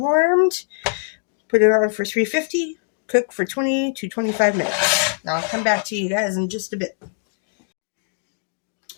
Put it on for 350. Cook for 20 to 25 minutes. Now I'll come back to you guys in just a bit.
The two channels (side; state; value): right; silent; digital silence